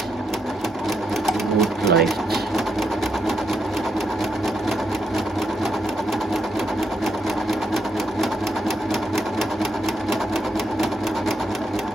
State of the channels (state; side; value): normal; both; correlation 0.80